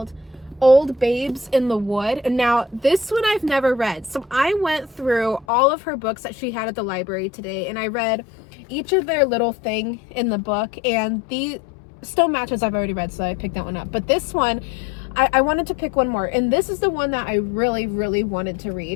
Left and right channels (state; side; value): drops out; right; at 5.5 s